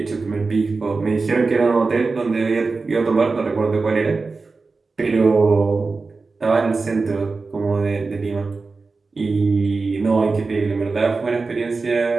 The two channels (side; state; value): left; quieter; 4.0 dB